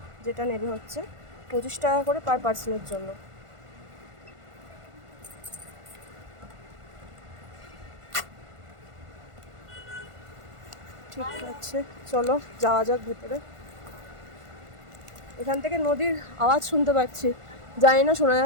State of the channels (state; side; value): late; left; 1.5 ms